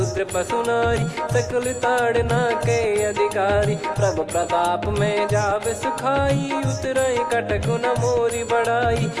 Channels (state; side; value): identical; both; correlation 1.00